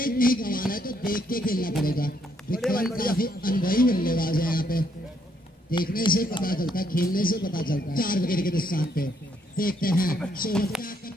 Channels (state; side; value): normal; both; correlation 0.72